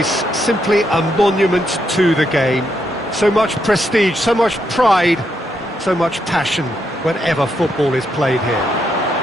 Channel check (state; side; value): normal; both; correlation 0.79